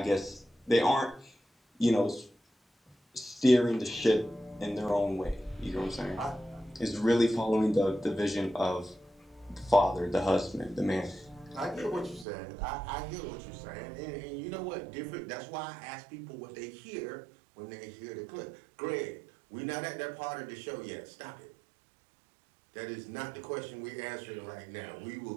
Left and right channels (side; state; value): left; drops out; at 12.2 s